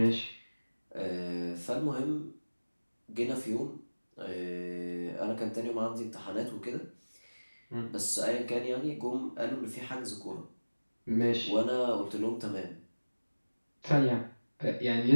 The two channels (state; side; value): inverted; both; correlation -1.00